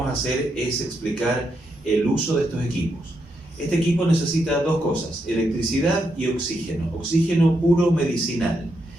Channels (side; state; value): both; normal; correlation 0.81